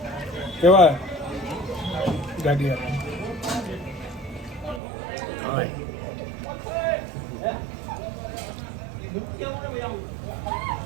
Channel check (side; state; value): left; drops out; at 4.8 s